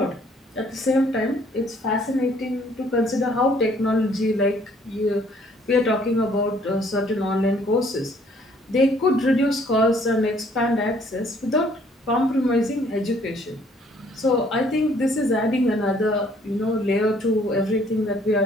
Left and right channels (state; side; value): normal; both; correlation 0.61